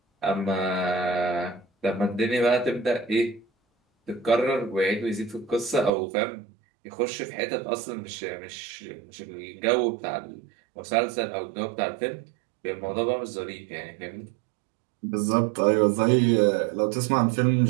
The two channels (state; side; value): drops out; left; at 5.9 s